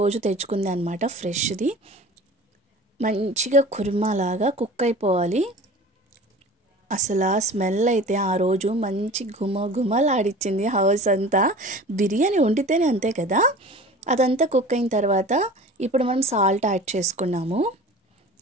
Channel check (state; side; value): normal; both; correlation 0.40